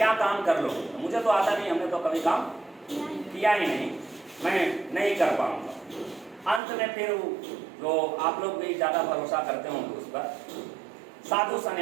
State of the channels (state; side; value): drops out; left; at 6.6 s